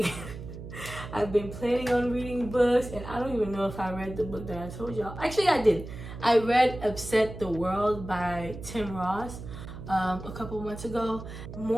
I've been planning on reading books, and I don't even know if I read the book that I told y'all. Actually, I did. I read Upset the World by Tim Ross a couple months ago.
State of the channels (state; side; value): noise; right; hum, 11 dB below the sound